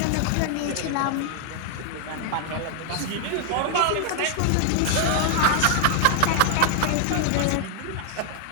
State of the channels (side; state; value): both; different; correlation 0.00